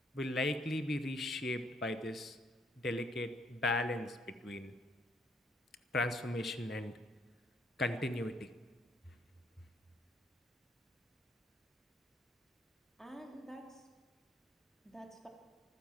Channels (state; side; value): normal; both; correlation 0.68